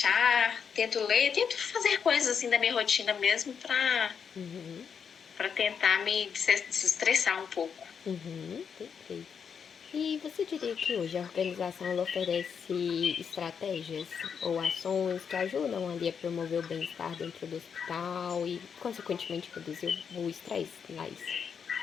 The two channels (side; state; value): right; quieter; 6.9 dB